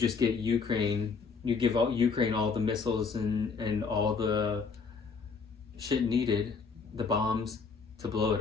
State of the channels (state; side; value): quieter; right; 5.1 dB